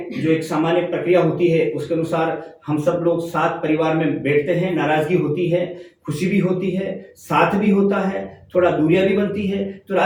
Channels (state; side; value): identical; both; correlation 1.00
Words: जो एक सामान्य प्रक्रिया होती है उसके अनुसार हम सब लोग साथ परिवार में बैठते हैं। नाराजगी होती है, खुशी भी होती है, साथ भी होता है, थोड़ा दूरियां भी बनती है, तो